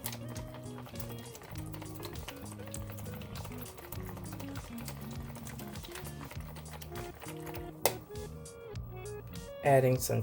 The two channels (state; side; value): identical; both; correlation 1.00